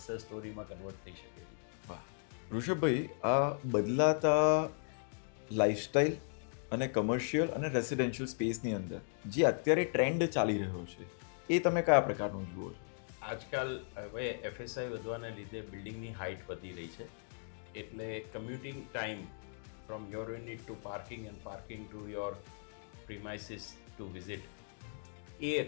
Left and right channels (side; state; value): right; silent; digital silence